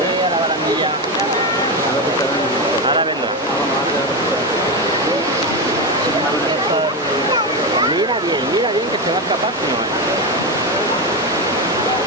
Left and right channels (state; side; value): normal; both; correlation 0.14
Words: a la barandilla. Ahora vendrá. Mira bien que se va a escapar, si no.